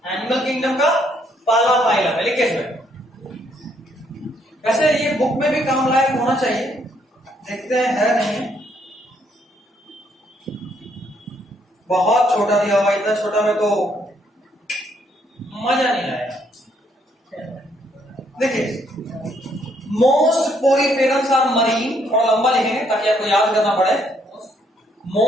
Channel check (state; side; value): normal; both; correlation 0.70